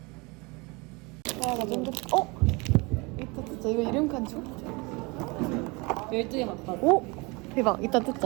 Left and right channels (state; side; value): quieter; left; 26.9 dB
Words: 와, 나 완전 이따 뜯자. 이거 이름 칸죠? 12개 갖다 줘. 오! 대박. 이따